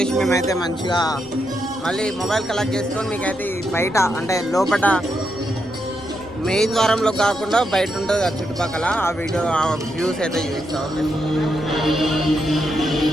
మేమైతే మంచిగా మళ్ళీ మొబైల్ కలెక్ట్ చేసుకొని మీకైతే బయట అంటే లోపల మెయిన్ ద్వారంలో కాకుండా బయట ఉంటుంది ఆ చుట్టుపక్కల ఆ వీడియో ఆ వ్యూస్ అయితే చూపిస్తాం. ఓకే,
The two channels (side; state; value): left; noise; rumble, 23 dB below the sound